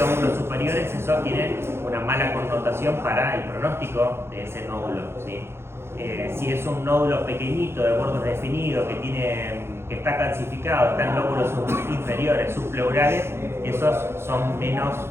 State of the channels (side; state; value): left; late; 0.12 ms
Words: lóbulos superiores, eso tiene una mala connotación para el pronóstico de ese nódulo, ¿sí? Si es un nódulo pequeñito, de bordes definidos, que está calcificado, está en lóbulos inferiores, subpleurales, esos son menos